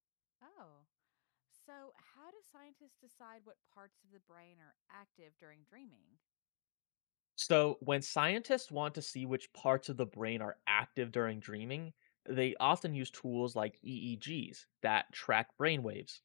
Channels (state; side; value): silent; right; digital silence